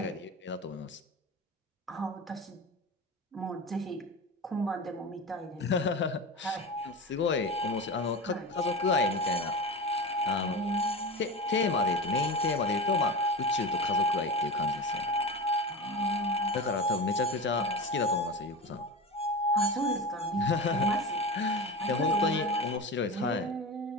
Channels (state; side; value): normal; both; correlation 0.26